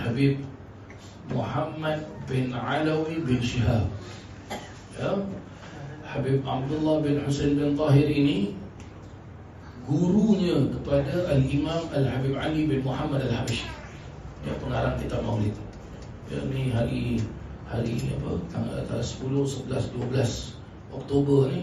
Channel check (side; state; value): both; identical; correlation 1.00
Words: Muhammad bin Alawi bin Shihab, ya. Habib Abdullah bin Husain bin Tahir ini gurunya kepada Al-Imam Al-Habib Ali bin Muhammad Al-Habashi, ya, pengarang kitab Maulid. Ya, ni hari apa? Tanggal 10, 11, 12 Oktober